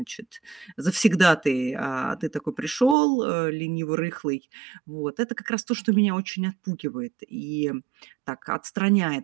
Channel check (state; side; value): drops out; left; at 3.0 s